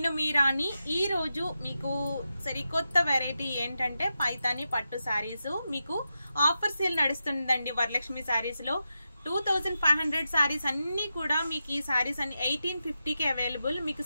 మీ రాణి. ఈ రోజు మీకు సరికొత్త వెరైటీ ఏంటంటే పైతాని పట్టు సారీస్ మీకు ఆఫర్ సేల్ నడుస్తుందండి వరలక్ష్మి సారీస్ లో. 2500 సారీస్ అన్ని కూడా మీకు ఈ సారీస్ అన్ని 1850కి అవైలబుల్. మీకు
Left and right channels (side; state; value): both; inverted; correlation -0.89